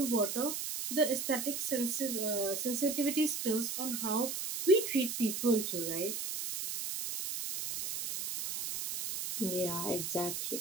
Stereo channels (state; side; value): noise; right; hiss, 4 dB below the sound